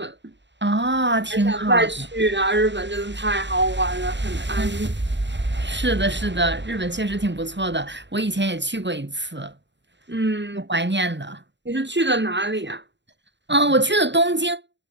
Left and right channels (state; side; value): late; left; 0.52 ms